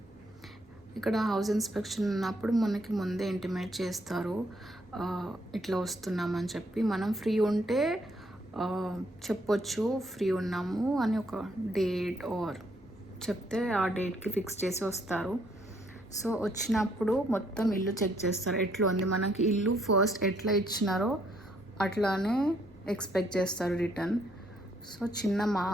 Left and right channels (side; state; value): both; normal; correlation 0.70